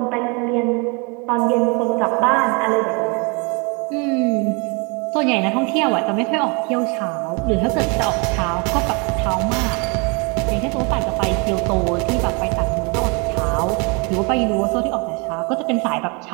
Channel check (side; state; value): left; quieter; 31.3 dB